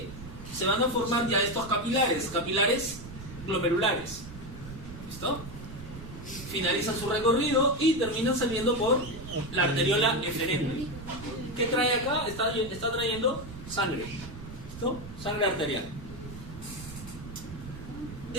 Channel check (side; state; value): right; noise; rumble, 13 dB below the sound